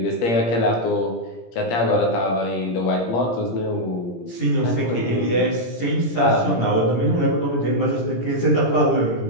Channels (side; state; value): right; late; 17 ms